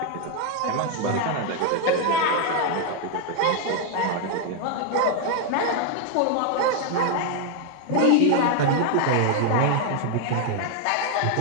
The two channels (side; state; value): both; different; correlation 0.01